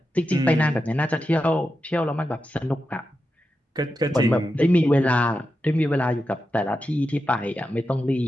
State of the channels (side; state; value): both; normal; correlation 0.89